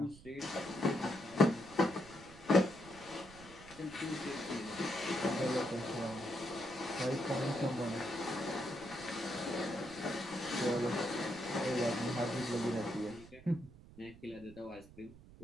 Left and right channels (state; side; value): noise; right; rumble, 19 dB below the sound